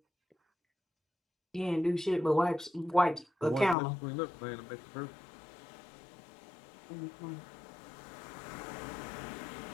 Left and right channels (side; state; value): right; drops out; at 3.8 s